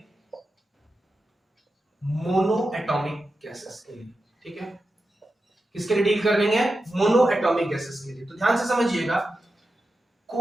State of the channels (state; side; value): normal; both; correlation 0.90